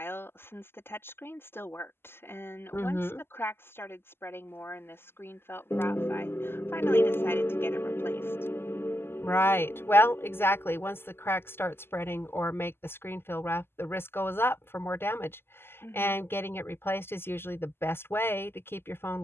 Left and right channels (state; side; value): late; right; 0.11 ms